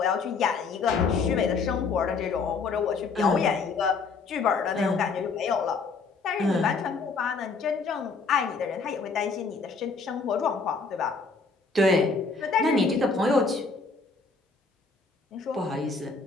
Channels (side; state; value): right; quieter; 4.5 dB